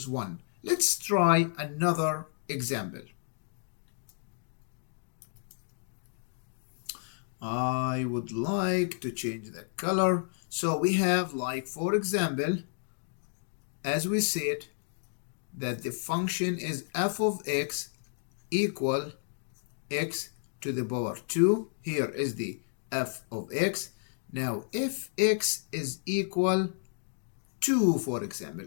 1. Let's try another example. I would like to change the color. So we have, like, for example, as we said, that the function is f of x equal x to the power 2. Here is the f of x. Now, if x is equal 2, for example,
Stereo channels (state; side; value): silent; right; digital silence